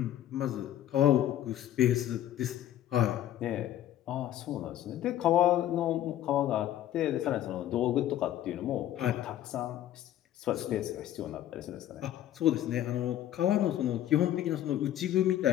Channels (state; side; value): quieter; right; 12.3 dB